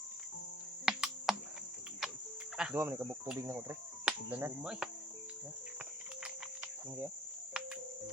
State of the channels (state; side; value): normal; both; correlation 0.55